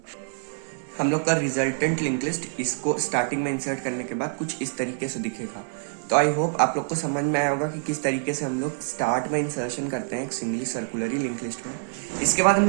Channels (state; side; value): silent; left; digital silence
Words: हम लोग का रिजल्टेंट लिंक लिस्ट इसको स्टार्टिंग में इंसर्ट करने के बाद कुछ इस तरीके से दिखेगा। तो आई होप आप लोग को समझ में आया होगा कि किस तरीके से हम लोग स्टार्ट में इंसर्शन करते हैं एक सिंगली सर्कुलरी लिंक लिस्ट में। इसके बाद हम